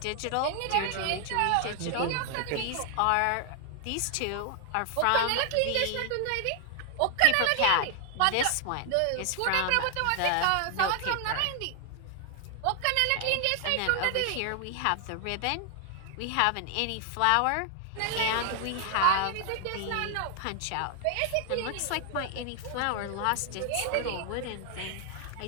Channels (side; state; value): both; different; correlation 0.00